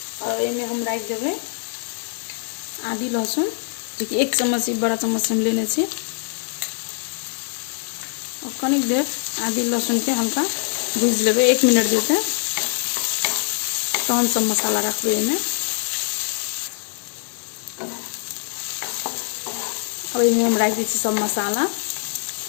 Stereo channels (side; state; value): right; silent; 63 dB below the other